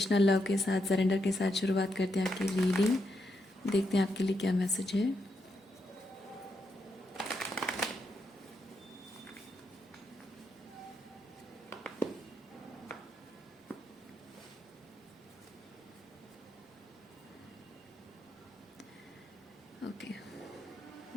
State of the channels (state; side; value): normal; both; correlation 0.82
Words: लव के साथ, सरेंडर के साथ शुरुआत करते हैं आपकी रीडिंग। देखते हैं आपके लिए क्या मैसेज है। ओके,